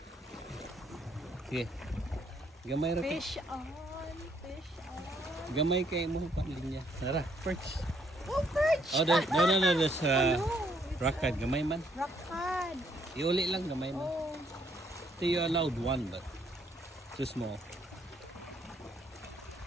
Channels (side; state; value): both; normal; correlation 0.69